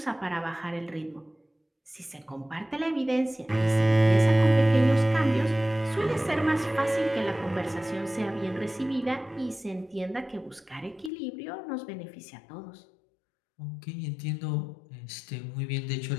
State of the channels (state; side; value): drops out; right; at 11.1 s